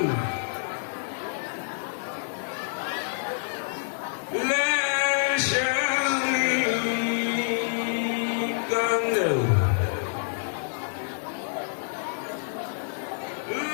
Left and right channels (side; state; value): right; silent; 60 dB below the other